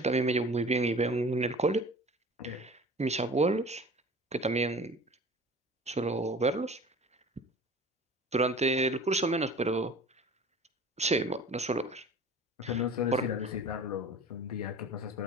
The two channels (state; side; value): normal; both; correlation 0.42